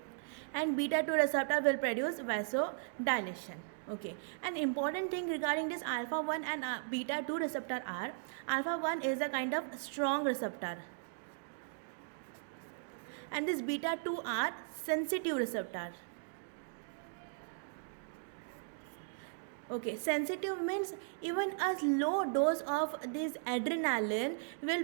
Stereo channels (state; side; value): silent; left; digital silence